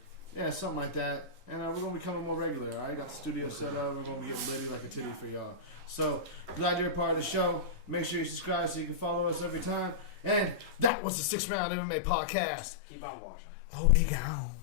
Yeah, something like that. And we're going to be coming more regular. I got the studio set up. We're going to be getting litty like a titty for y'all. So, glad you're a part of the show. Make sure you subscribe so you can follow us every time. And that was the 6 Round MMA Podcast. Keep on watching. Oh, we go.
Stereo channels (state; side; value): drops out; right; at 10.9 s